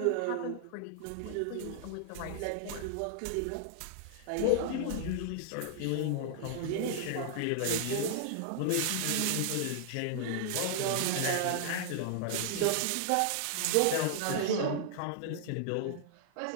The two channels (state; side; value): different; both; correlation -0.01